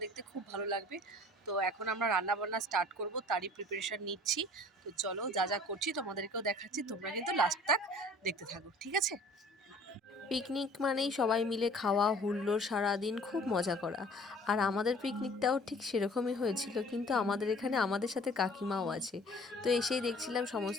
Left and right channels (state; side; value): normal; both; correlation 0.50